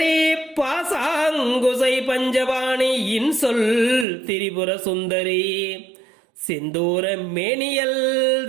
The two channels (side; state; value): left; drops out; at 4.0 s